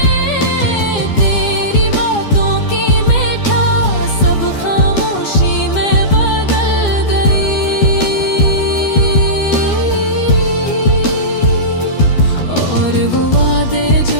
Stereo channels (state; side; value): late; right; 12 ms